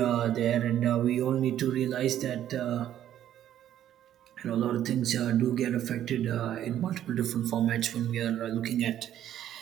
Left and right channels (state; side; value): quieter; left; 11.3 dB